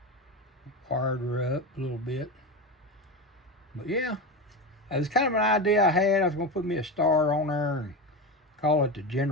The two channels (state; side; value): normal; both; correlation 0.20